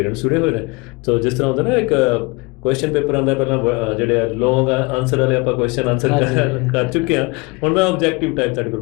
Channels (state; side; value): quieter; right; 26.7 dB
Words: ਜੁੜੇ ਹੋਏ ਨੇ। ਸੋ ਜਿਸ ਤਰ੍ਹਾਂ ਹੁੰਦਾ ਨਾ ਇੱਕ ਕੁਐਸਚਨ ਪੇਪਰ ਆਉਂਦਾ, ਪਹਿਲਾਂ ਜਿਹੜੇ ਲੌਂਗ ਆਨਸਰ ਵਾਲੇ ਆਪਾਂ ਕੁਐਸਚਨ ਆਨਸਰ ਕਰ ਚੁੱਕੇ ਹਾਂ। ਹੁਣ ਮੈਂ ਆਬਜੈਕਟਿਵ ਟਾਈਪ ਤੁਹਾਡੇ ਕੋਲ